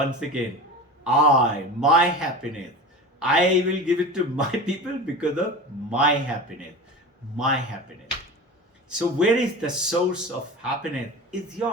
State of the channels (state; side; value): normal; both; correlation 0.31